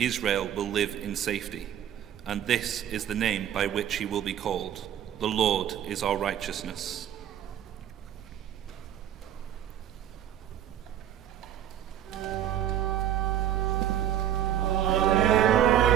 will live in safety. And this is the name by which he will be called. The Lord is our righteousness.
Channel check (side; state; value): left; quieter; 10.6 dB